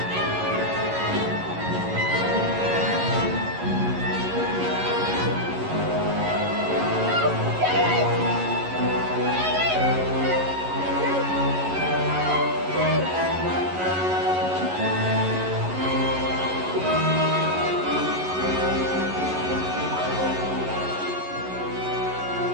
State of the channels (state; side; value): late; left; 11 ms